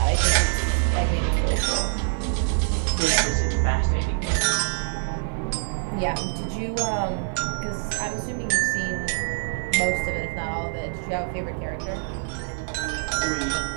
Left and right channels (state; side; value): silent; left; digital silence